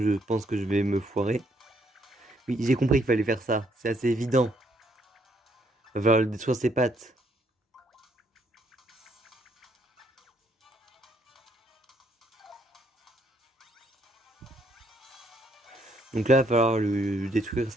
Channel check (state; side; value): normal; both; correlation 0.70